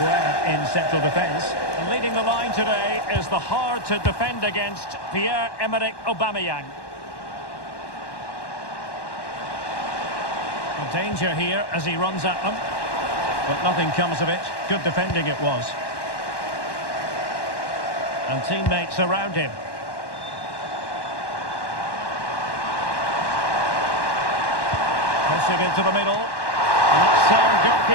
in central defence. And leading the line today is the hard-to-defend against Pierre-Emerick Aubameyang. A danger here as he runs at them. But nothing comes of it. Good defending it was. And teammates around him. Pushing into the middle. And that's sound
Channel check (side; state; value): right; late; 1.1 ms